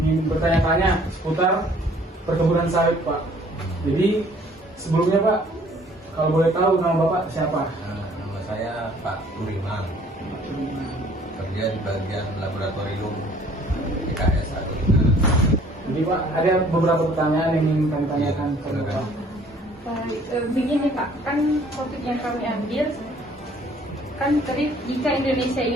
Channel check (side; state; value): both; normal; correlation 0.57